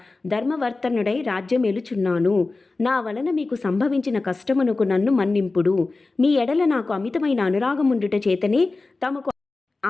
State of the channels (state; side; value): quieter; right; 3.5 dB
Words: ధర్మవర్తనుడై రాజ్యమేలుచున్నాను. నా వలన మీకు సంభవించిన కష్టమునకు నన్ను మన్నింపుడు. మీ ఎడల నాకు అమితమైన అనురాగముండుట చేతనే తమకు